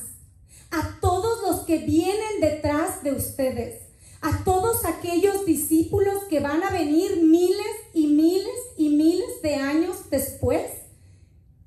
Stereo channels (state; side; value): identical; both; correlation 1.00